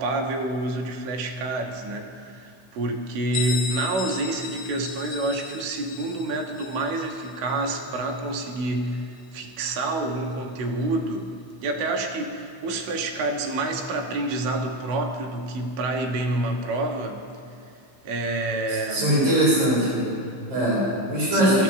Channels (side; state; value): left; late; 16 ms